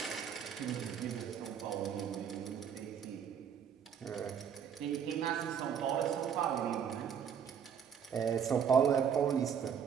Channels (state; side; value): quieter; left; 7.9 dB